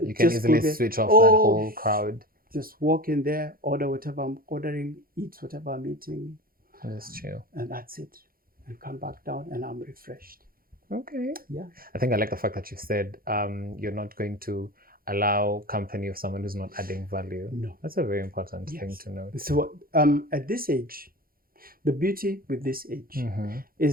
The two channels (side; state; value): left; late; 0.42 ms